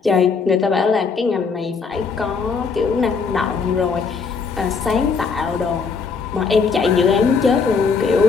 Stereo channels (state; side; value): quieter; right; 5.2 dB